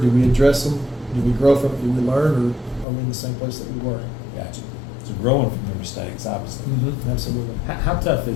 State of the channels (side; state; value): right; drops out; at 2.9 s